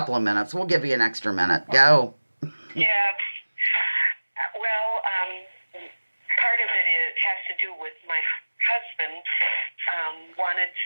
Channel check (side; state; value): both; inverted; correlation -1.00